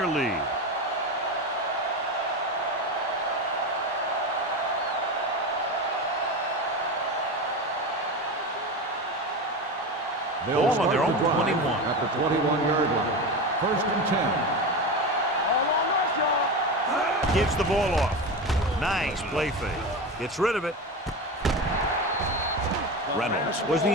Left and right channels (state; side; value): normal; both; correlation 0.22